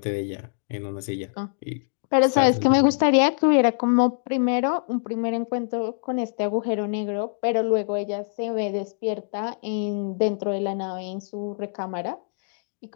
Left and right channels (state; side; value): silent; right; digital silence